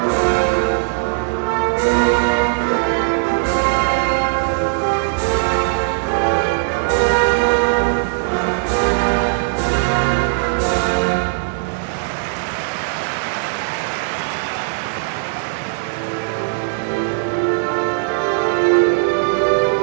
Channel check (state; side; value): silent; left; digital silence